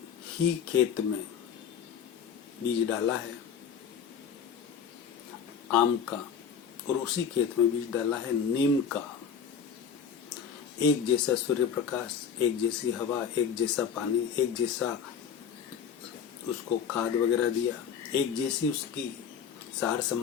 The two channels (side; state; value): right; quieter; 7.2 dB